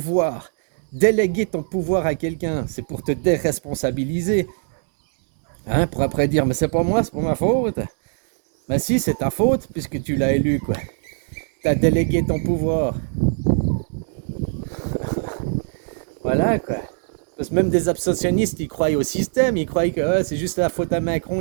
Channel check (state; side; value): silent; left; 63 dB below the other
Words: Déléguer ton pouvoir à quelqu'un, c'est pour te déresponsabiliser. Hein, pour après dire, mais c'est pas moi, c'est pas ma faute. Ben si, c'est ta faute, puisque tu l'as élu, quoi. Tu as délégué ton pouvoir. Voilà quoi. Parce que même des abstentionnistes, ils croient au système, ils croient que c'est juste la faute à Macron,